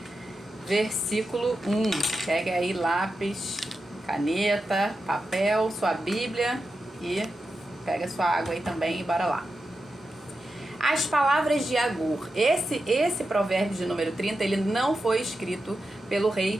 versículo 1. Pega aí lápis, caneta, papel, sua Bíblia e pega sua água aí também e bora lá. As palavras de Agur. Esse provérbio de número 30, ele não foi escrito pelo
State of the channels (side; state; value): both; normal; correlation 0.90